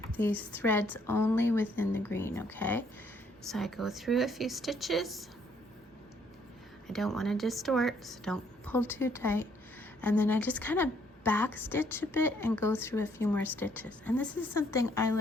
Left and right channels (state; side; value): normal; both; correlation 0.67